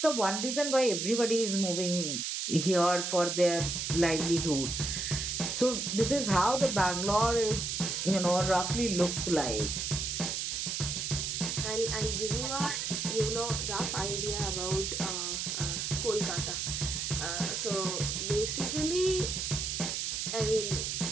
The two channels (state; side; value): noise; right; hiss, 2 dB below the sound